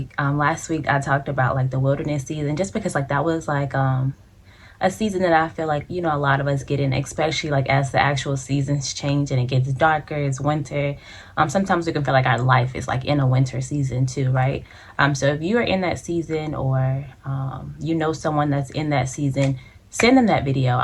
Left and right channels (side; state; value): both; identical; correlation 1.00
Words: I talked about the wilderness season, just because that was a season that I feel a lot of us get in, especially as the actual seasons change and it gets darker, it's winter. Sometimes we can feel like our life is in a winter season too, right? So if you are in that season, or you know someone that's in that season, send them that video.